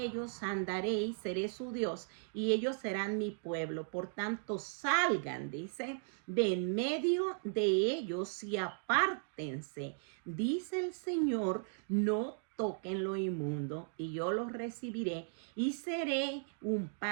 ellos, andaré y seré su Dios, y ellos serán mi pueblo. Por tanto, salgan, dice, de en medio de ellos y apártense, dice el Señor, no toquen lo inmundo, y yo los recibiré y seré un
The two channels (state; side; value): silent; left; digital silence